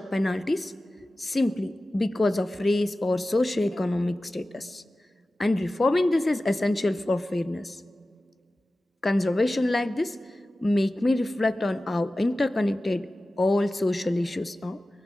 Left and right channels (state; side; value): normal; both; correlation 0.96